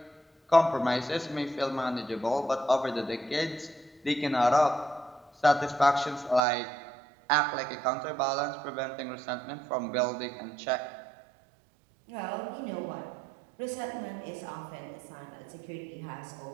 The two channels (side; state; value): left; drops out; at 6.4 s